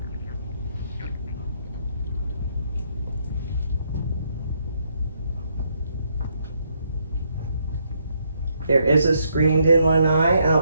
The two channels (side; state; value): both; inverted; correlation -0.74